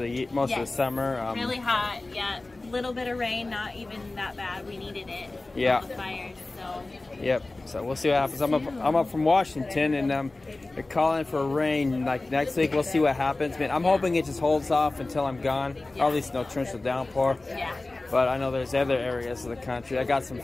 the summer. Really hot. Yeah. Little bit of rain, not even that bad. We needed it. Yeah. The fires. So. Yep. So we'll see what happens. I'm up from Washington, and they're calling for rain like next week. We'll see what happens. Man, I'm hoping it just holds off until I'm gone. Or at least no torrential downpour. Yeah. But I know there's other areas of the country. I got some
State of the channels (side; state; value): right; quieter; 3.1 dB